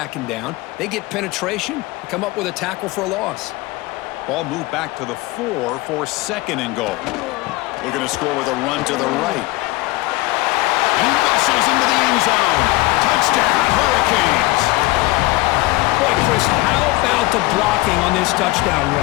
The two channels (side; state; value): right; quieter; 20.6 dB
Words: down. They get penetration and come up with a tackle for a loss. Ball moved back to the 4 for 2nd and goal. Looking to score with a run to the right. He muscles into the end zone. Touchdown, Hurricanes. Boy, Chris, how about the blocking on this touchdown